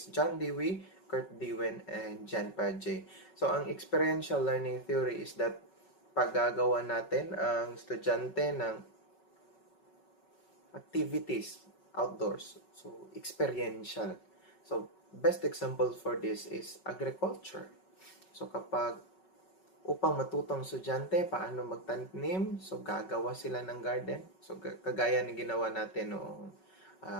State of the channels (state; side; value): late; right; 5.3 ms